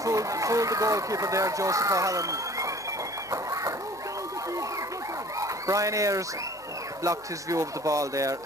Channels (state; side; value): noise; left; hum, 27 dB below the sound